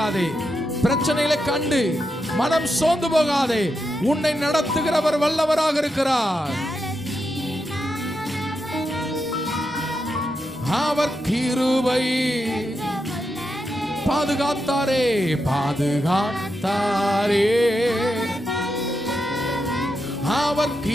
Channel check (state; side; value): normal; both; correlation 0.86